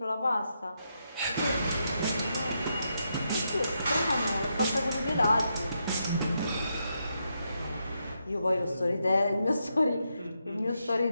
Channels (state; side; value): inverted; both; correlation -0.82